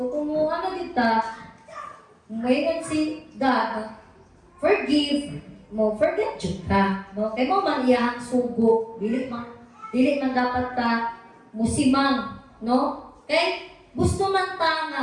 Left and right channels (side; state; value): both; identical; correlation 1.00